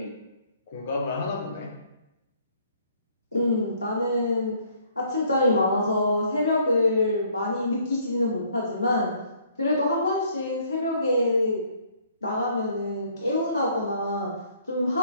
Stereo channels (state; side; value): inverted; both; correlation -0.63